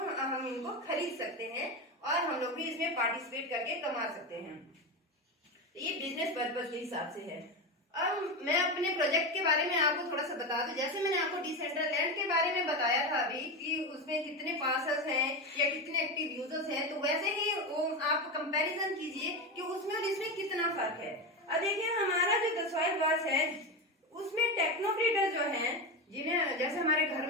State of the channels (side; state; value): both; normal; correlation 0.17